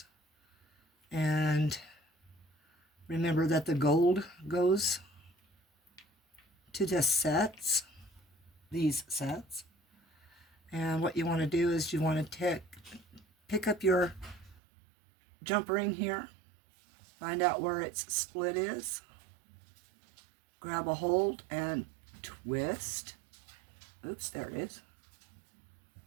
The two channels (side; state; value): left; drops out; at 14.6 s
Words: And remember that the gold goes to the sets, these sets. And what you want to do is you want to pick up your jump ring here Find out where its split is. Grab a hold and twist. Oops, there it is.